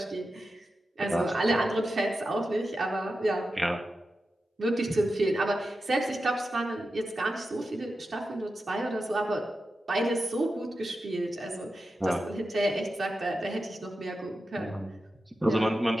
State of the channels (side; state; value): both; normal; correlation 0.91